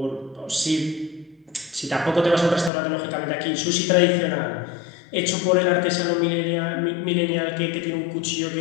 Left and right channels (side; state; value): right; drops out; at 2.7 s